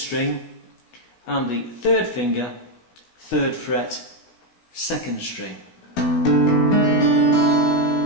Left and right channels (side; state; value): right; late; 17 ms